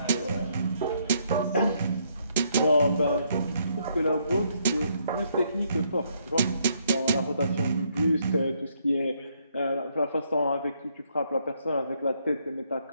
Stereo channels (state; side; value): inverted; both; correlation -0.72